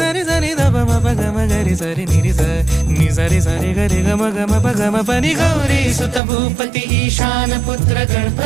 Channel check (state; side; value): drops out; left; at 6.2 s